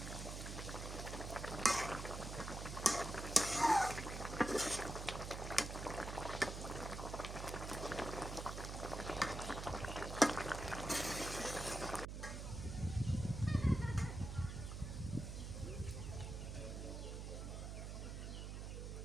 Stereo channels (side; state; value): right; noise; hum, 6 dB below the sound